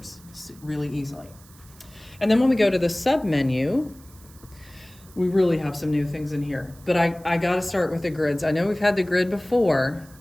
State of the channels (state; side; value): noise; right; hiss, 25 dB below the sound